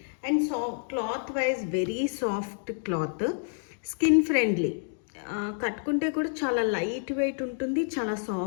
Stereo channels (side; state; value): right; silent; digital silence